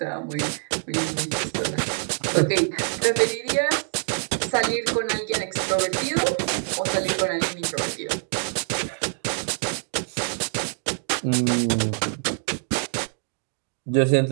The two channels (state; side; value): silent; left; digital silence